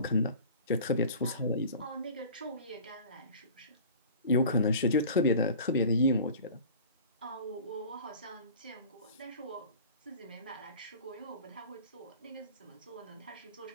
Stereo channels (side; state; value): both; inverted; correlation -0.41